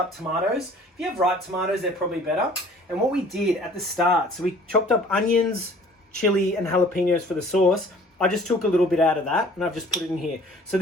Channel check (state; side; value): normal; both; correlation 0.51